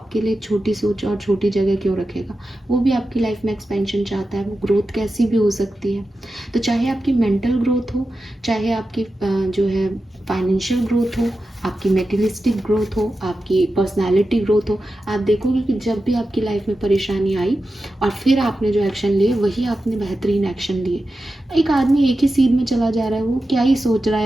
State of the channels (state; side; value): normal; both; correlation 0.92